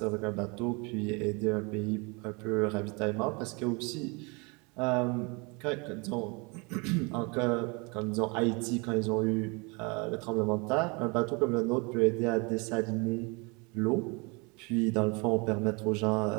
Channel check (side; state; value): left; quieter; 29.9 dB